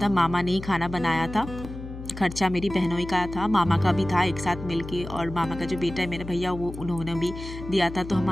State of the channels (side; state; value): left; noise; hum, 11 dB below the sound